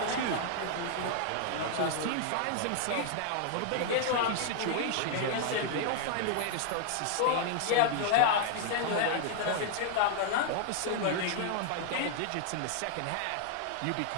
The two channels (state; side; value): different; both; correlation 0.00